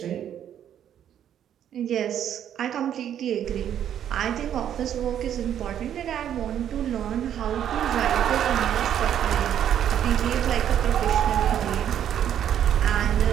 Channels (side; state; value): left; quieter; 9.9 dB